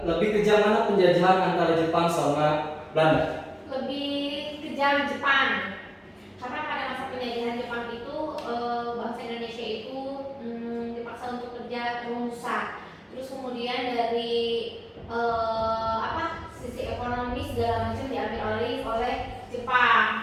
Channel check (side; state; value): both; identical; correlation 1.00